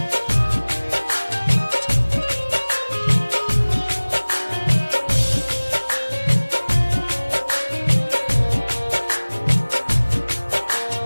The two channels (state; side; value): inverted; both; correlation -1.00